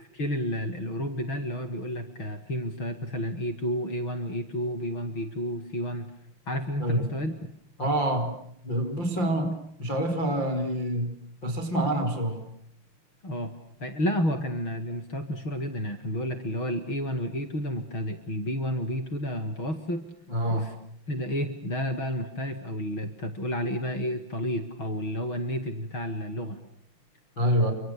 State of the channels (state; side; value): late; right; 5.9 ms